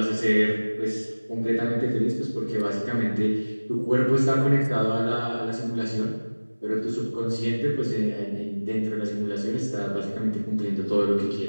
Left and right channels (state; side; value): inverted; both; correlation -1.00